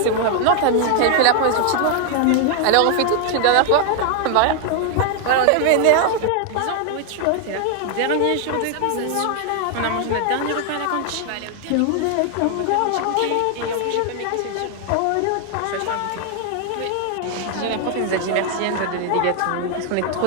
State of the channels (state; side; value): different; both; correlation 0.00